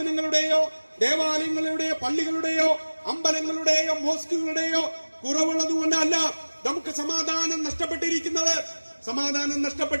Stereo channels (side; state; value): both; inverted; correlation -1.00